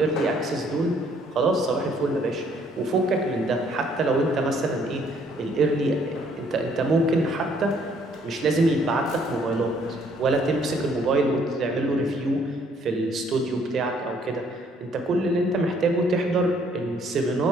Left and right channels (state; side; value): normal; both; correlation 0.64